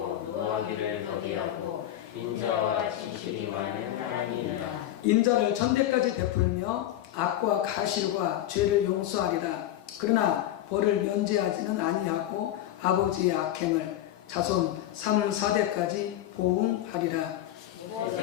노하기를 더디하고 인자와 진실이 많은 하나님이라. 인자를 천대까지 베풀며 악과 가실과 죄를 용서하리라. 그러나 벌을 면제하지는 아니하고 아버지의 악행을 자손 3, 4대까지 보응하리라.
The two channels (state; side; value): quieter; right; 12.9 dB